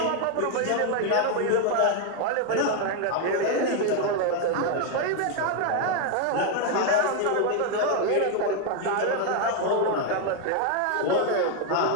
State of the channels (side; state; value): both; different; correlation 0.01